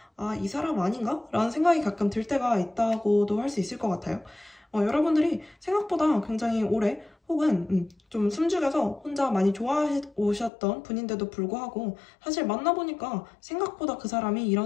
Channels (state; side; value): drops out; right; at 10.5 s